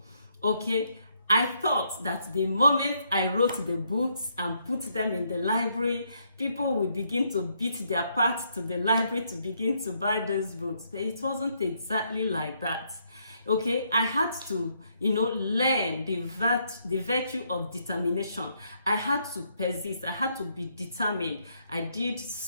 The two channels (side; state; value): both; inverted; correlation -0.74